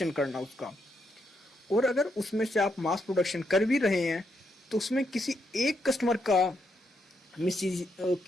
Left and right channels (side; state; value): both; normal; correlation 0.79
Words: करना उसका। और अगर उसमें से आप मास प्रोडक्शन कर भी रहे हैं तो उसमें किसी एक कस्टमर का